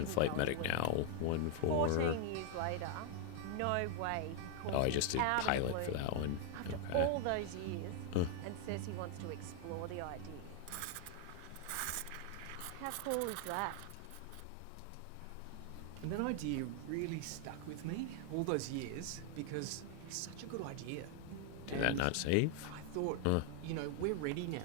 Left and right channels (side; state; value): both; different; correlation 0.00